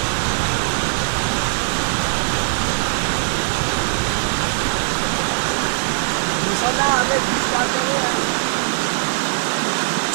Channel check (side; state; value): left; silent; digital silence